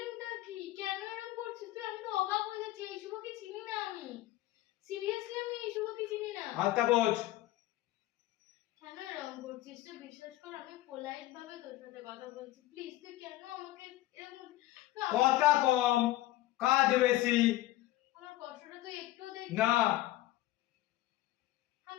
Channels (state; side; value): quieter; right; 16.3 dB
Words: কি, কেন এরকম করছিস তুই? আমি তো অবাক হয়ে যাচ্ছি, এই শুভকে চিনি না আমি, সিরিয়াসলি আমি এই শুভকে চিনি না। হাতটা বোঝ। কেন এরকম করছিস তুই? বিশ্বাস কর আমি পোলাইট ভাবে তোর সাথে কথা বলছি, প্লিজ তুই কেন আমাকে এরকম কথা কম, কাজ বেশি। আমার কষ্টটা তুই একটু দেখ না